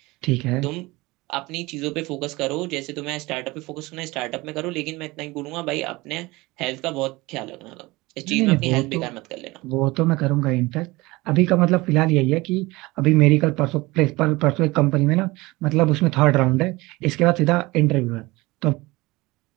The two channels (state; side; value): quieter; left; 21.7 dB